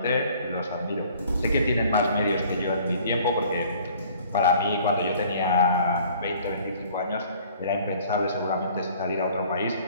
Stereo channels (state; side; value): inverted; both; correlation -0.54